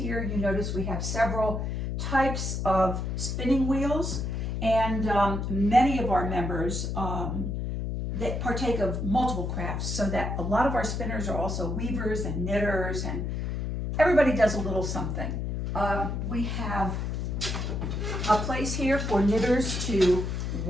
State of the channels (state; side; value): noise; left; hum, 2 dB below the sound